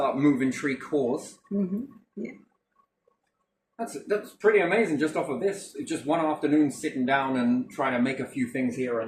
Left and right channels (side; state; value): both; identical; correlation 1.00